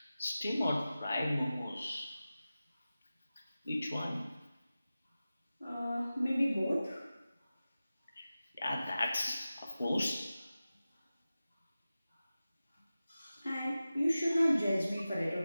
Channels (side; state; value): both; inverted; correlation -0.95